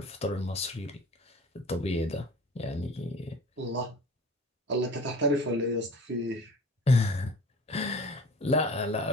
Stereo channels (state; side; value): normal; both; correlation 0.42